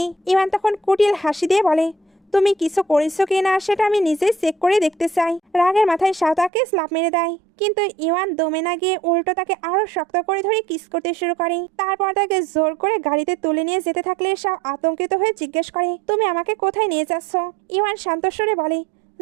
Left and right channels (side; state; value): left; drops out; at 6.5 s